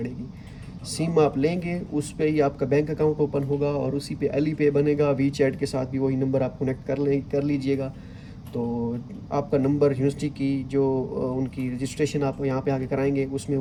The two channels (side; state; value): both; identical; correlation 1.00